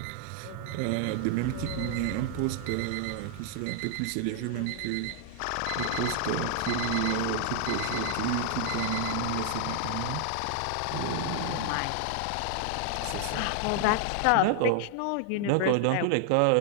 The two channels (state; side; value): different; both; correlation 0.00